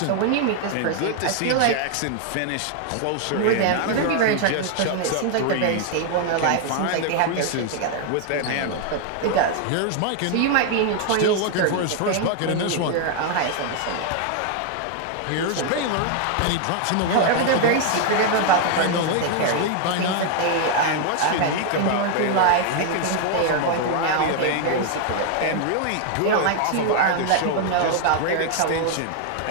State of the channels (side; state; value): both; different; correlation 0.00